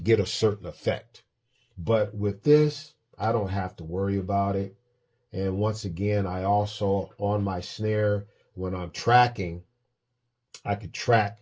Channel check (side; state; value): both; identical; correlation 1.00